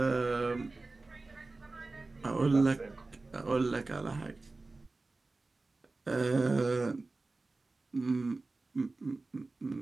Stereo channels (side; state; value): left; quieter; 3.4 dB